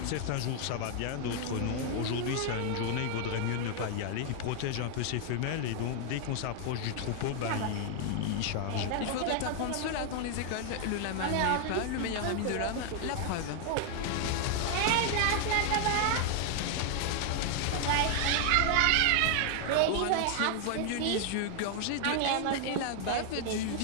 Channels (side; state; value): both; different; correlation 0.00